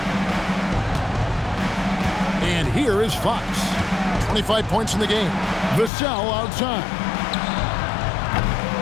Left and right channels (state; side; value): drops out; right; at 5.9 s